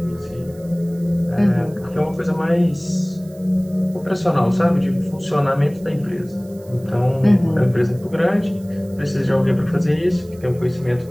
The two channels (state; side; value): noise; right; hiss, 26 dB below the sound